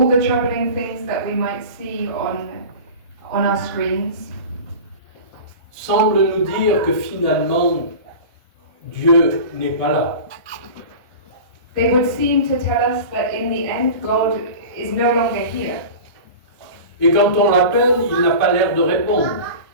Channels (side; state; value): both; inverted; correlation -0.34